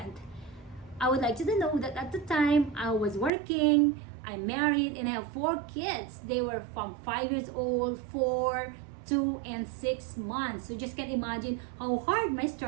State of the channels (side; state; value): left; drops out; at 3.3 s